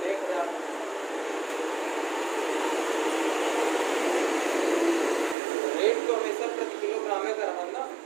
हैं? 1000। रेट तो हमेशा प्रति किलोग्राम में कर रहा ना,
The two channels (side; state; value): left; drops out; at 5.4 s